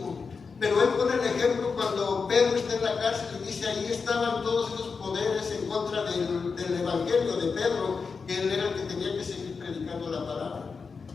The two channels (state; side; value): quieter; right; 5.1 dB